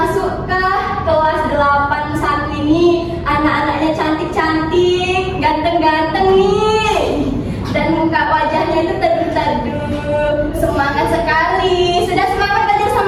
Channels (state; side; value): identical; both; correlation 1.00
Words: ke kelas 81 ini anak-anaknya cantik-cantik, ganteng-ganteng nih. Dan muka wajahnya itu teduh-teduh, semangat sekali. Sudah semangat belajar